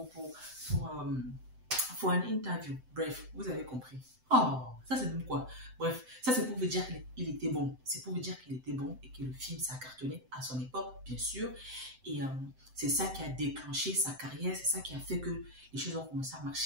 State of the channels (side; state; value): left; late; 7.8 ms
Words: for an interview. Bref, vous avez compris. Oh, ça c'est même quoi? Bref, ça c'est pour vous dire qu'il était bon. C'est pour vous dire qu'il était bon et que le film, ça a cartonné à son époque, bien sûr. Et c'est ça qui a déclenché sa carrière. C'est ça qui a fait que les choses ont commencé à